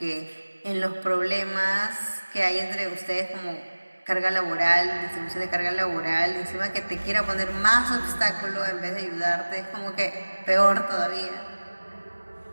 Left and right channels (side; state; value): both; inverted; correlation -1.00